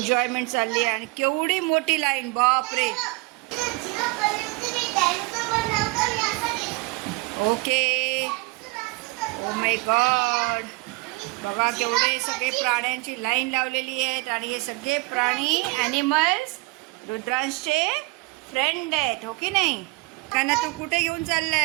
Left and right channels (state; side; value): quieter; left; 25.4 dB